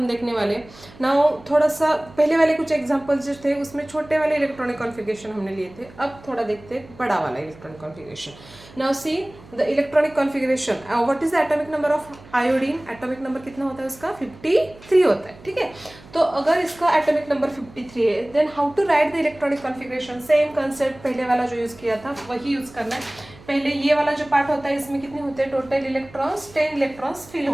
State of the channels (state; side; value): noise; right; hum, 22 dB below the sound